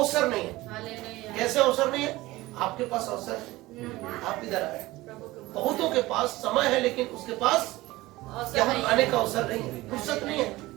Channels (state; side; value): quieter; left; 18.9 dB